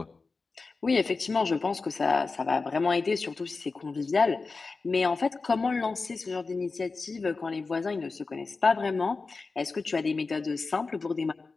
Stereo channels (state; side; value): quieter; right; 4.1 dB